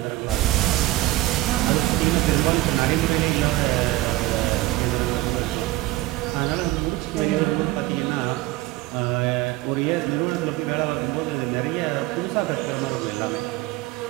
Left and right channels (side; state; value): left; quieter; 17.6 dB